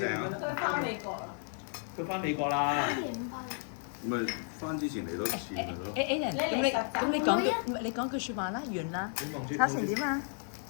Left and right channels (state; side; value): silent; right; 56 dB below the other